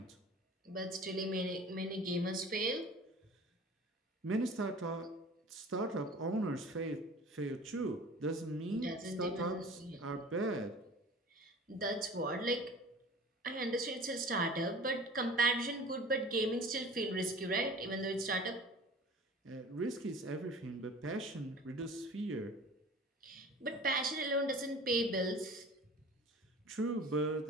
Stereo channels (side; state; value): both; normal; correlation 0.42